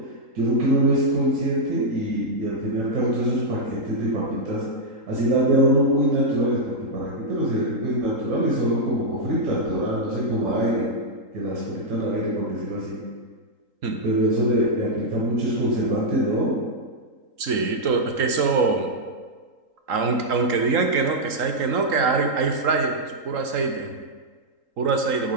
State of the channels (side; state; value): left; late; 3.8 ms